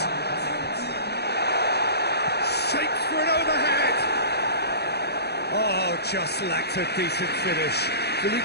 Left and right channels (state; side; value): late; right; 0.48 ms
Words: Shapes for an overhead. Oh, just lacked a decent finish.